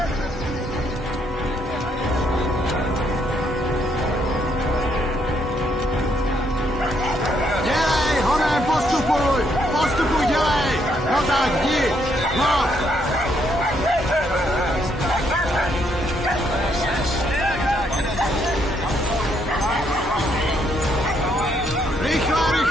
Dělej, honem, postupuj, dělej. No tak, jdi, no.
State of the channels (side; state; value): both; normal; correlation 0.73